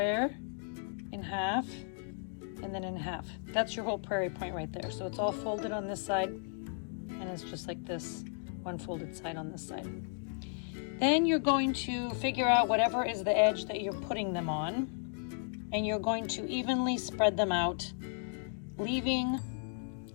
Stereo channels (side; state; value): right; silent; 55 dB below the other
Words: in half, and then in half. That's your whole prairie point right there. So it's all folded on this side, and it's just like this, one folded side on this side. Then you're going to figure out whatever is the edge that you're putting them on, and you're going to evenly spread them out,